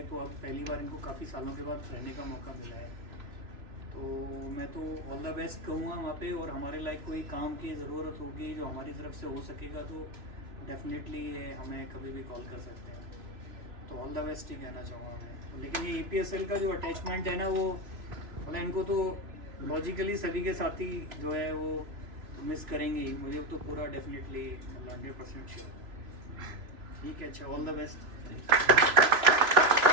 तो अब पहली बार इनको काफ़ी सालों के बाद रहने का मौका मिला है। तो मैं तो ऑल द बेस्ट कहूँगा वहाँ पे, और हमारे लायक कोई काम की ज़रूरत होगी जो हमारी तरफ से हो सकेगा तो डेफिनेटली हमें कभी भी कॉल कर सकते हैं। तो ऑल द बेस्ट ही कहना चाहूँगा मैं। लेकिन ये EPSL का जो अटैचमेंट है ना, वो मतलब इनको तो लॉजिकली सभी के साथ ही जो है वो मिस करेंगे ही, मुझे तो पूरा डेफिनेटली मतलब 100% श्योर। ठीक है, अच्छा, all the best.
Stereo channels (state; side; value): late; left; 3.0 ms